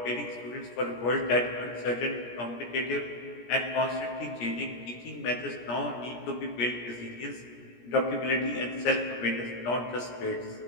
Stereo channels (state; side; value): late; right; 17 ms